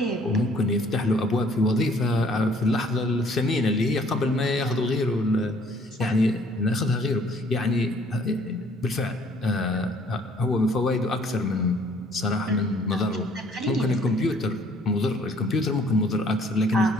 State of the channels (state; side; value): normal; both; correlation 0.59